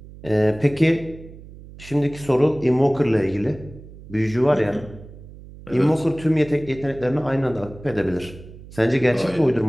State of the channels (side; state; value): right; noise; hum, 18 dB below the sound